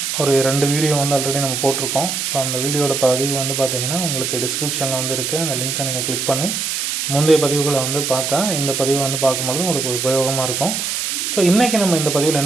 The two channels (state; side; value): noise; right; hiss, 2 dB below the sound